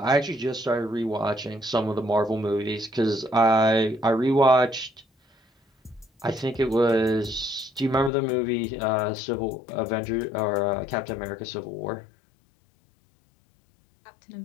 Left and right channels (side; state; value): right; drops out; at 8.1 s